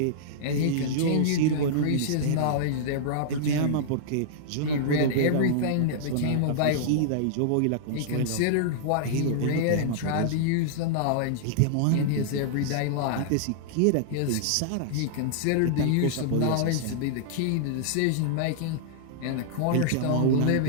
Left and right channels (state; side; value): different; both; correlation -0.02